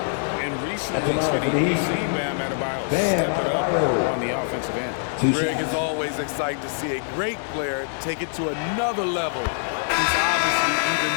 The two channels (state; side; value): silent; right; digital silence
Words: And recently, we've seen Bam Adebayo step it up on the offensive end. Greg is always excited to see a great player take it to another level. He's obviously even